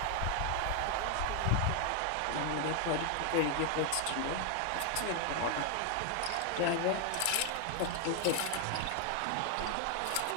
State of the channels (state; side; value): different; both; correlation 0.00